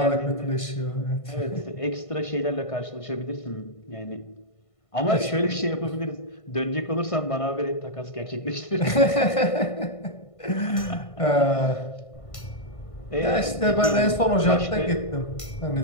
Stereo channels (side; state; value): right; late; 1.5 ms